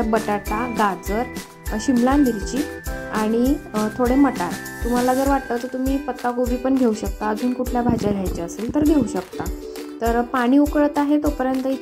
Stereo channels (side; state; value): both; identical; correlation 1.00